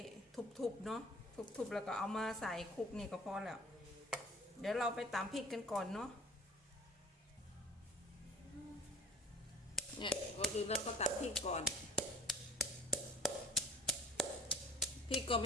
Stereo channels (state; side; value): normal; both; correlation 0.46